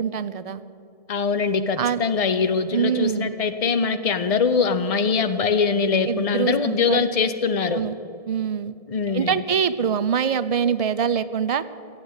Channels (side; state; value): right; late; 1.7 ms